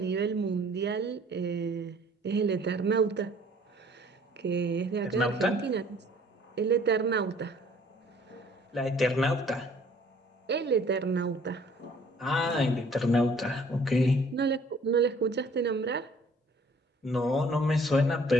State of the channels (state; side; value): normal; both; correlation 0.56